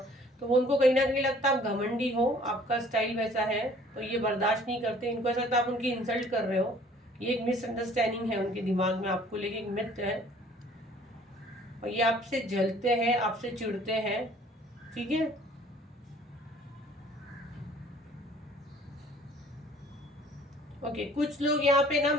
तो वो उनको कहीं ना कहीं लगता है आप घमंडी हो, आपका स्टाइल वैसा है, तो ये बर्दाश्त नहीं करते। इनको ऐसा लगता है आप उनकी इंसल्ट कर रहे हो। ये एक मिसअंडरस्टैंडिंग है उनके दिमाग में आपको लेके, एक मिथ है। और ये आपसे जलते हैं, आपसे चिढ़ते हैं। ठीक है, ओके, कुछ लोग यहाँ पे ना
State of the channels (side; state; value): both; normal; correlation 0.54